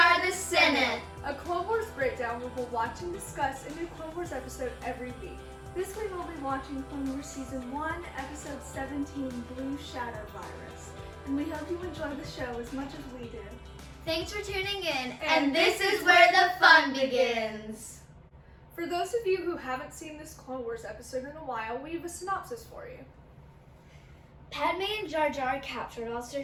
the Senate, a Clone Wars breakdown where we'll watch and discuss a new Clone Wars episode every week. This week we'll be watching Clone Wars Season 1, Episode 17, Blue Shadow Virus. And we hope you enjoy the show as much as we do. Thanks for tuning in, and this is where the fun begins. For those of you who haven't seen this Clone Wars episode in a while, we have a synopsis for you. Padme and Jar Jar are captured while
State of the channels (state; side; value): identical; both; correlation 1.00